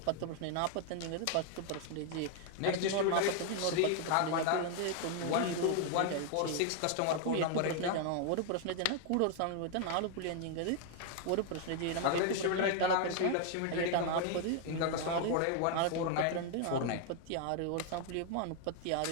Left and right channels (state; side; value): different; both; correlation 0.00